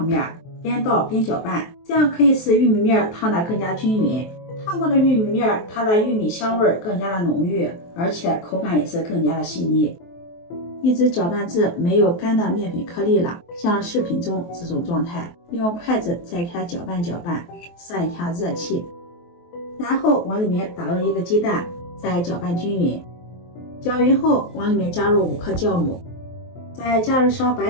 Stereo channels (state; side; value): late; right; 23 ms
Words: 面，边倒边搅拌，这样可以使玉米面烫得更加均匀。烫过的玉米面，它的玉米香味更加的浓郁，而且口感也是更加的细腻。一直搅拌至没有干的面粉颗粒了，像视频中这种状态，用筷子再给它搅拌搅拌，散一下热气，然后往里面打入1个鸡蛋，再搅拌均匀。搅匀后，往里面加入5克酵母，再加入勺